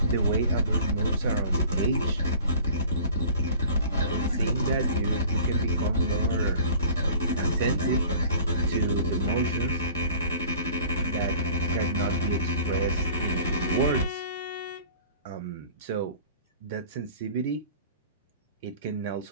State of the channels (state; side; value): inverted; both; correlation -0.46